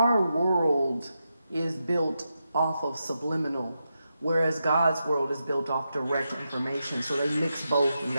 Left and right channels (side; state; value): both; inverted; correlation -0.87